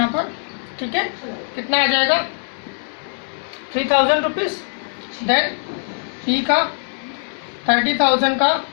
पर. ठीक है, कितना आ जाएगा? 3,000 रुपीज. देन पी का 30,000 का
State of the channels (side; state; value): right; silent; digital silence